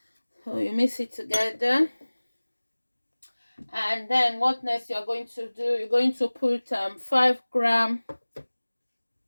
So you mix it together, and then what next you're going to do, you're going to put 5 grams.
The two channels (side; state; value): both; inverted; correlation -1.00